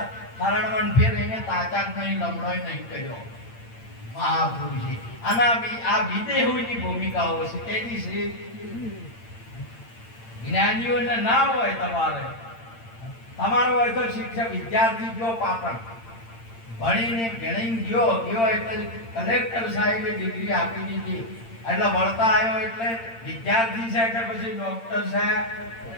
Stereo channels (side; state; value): right; late; 8.8 ms